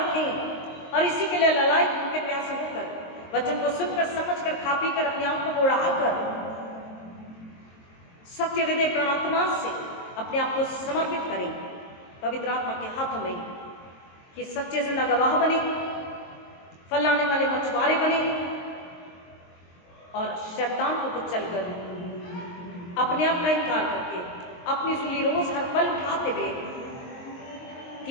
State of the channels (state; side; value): late; right; 23 ms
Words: और इसी के लिए ललायत भूखे प्यासे होकर वचन को सुनकर, समझकर, खा पी कर, अपने आप को बढ़ाकर सत्य हृदय प्राणात्मा से अपने आप को समर्पित करें पवित्र आत्मा के हाथों में, कि सच्चे जिंदा गवाह बने, फल लाने वाले मछुआरे बने और शैतान को कुचलकर अपने आप का इनकार करके अपनी सूली रोज हर पल उठाते हुए